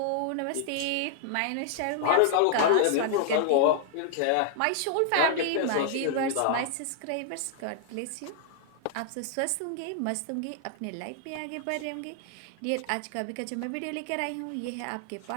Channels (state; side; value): different; both; correlation -0.01